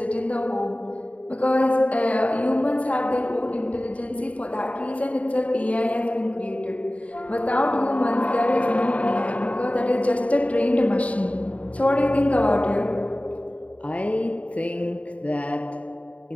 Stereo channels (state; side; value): late; right; 0.067 ms